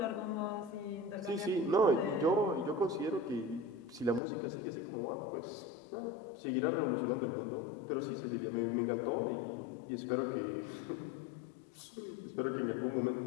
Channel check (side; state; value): right; drops out; at 4.2 s